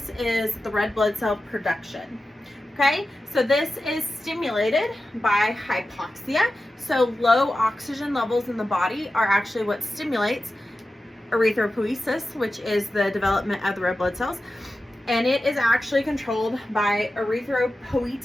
is the red blood cell production. Okay, so this is stimulated by hypoxia. So low oxygen levels in the body are actually what stimulates erythropoiesis, which is the development of the red blood cells. And it is actually controlled by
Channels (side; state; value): both; normal; correlation 0.93